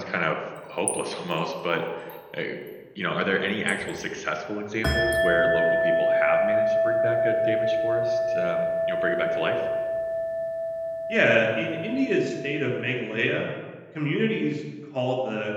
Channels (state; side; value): identical; both; correlation 1.00